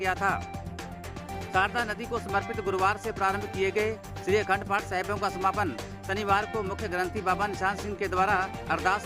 था। शारदा नदी को समर्पित गुरुवार से प्रारंभ किए गए श्री अखंड पाठ साहिबों का समापन शनिवार को मुख्य ग्रंथी बाबा निशान सिंह के द्वारा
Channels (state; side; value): identical; both; correlation 1.00